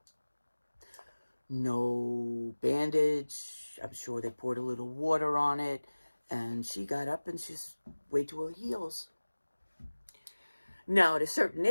No bandage. I'm sure they poured a little water on it. And she got up and she's way to her heels. Now, at a certain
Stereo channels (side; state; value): both; inverted; correlation -1.00